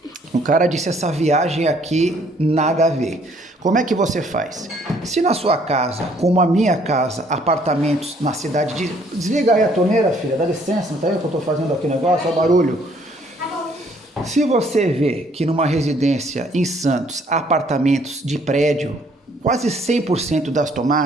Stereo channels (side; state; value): both; normal; correlation 0.63